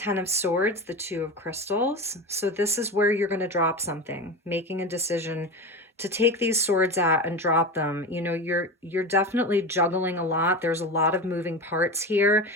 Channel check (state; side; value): normal; both; correlation 0.25